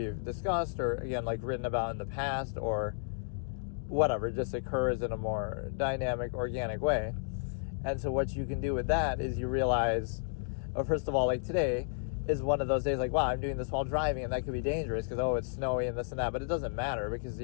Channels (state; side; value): silent; right; digital silence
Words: discussed, or again, like written about in the past, or whatever, just occurs in a more dynamic, organic way. And so what you can do with that is you realize, first of all, like today is one of those days like, wow, I'm doing this while driving, and that could be dangerous because, oh, it's snowy and this and that, but it doesn't matter, because